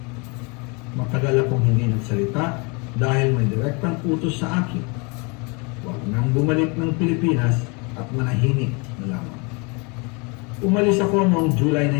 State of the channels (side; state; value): right; quieter; 31.0 dB